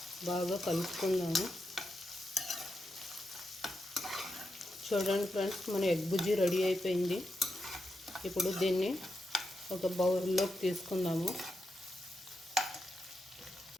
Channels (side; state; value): both; normal; correlation 0.86